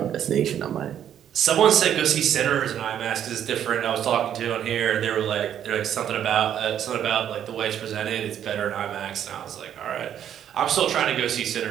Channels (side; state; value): left; quieter; 9.9 dB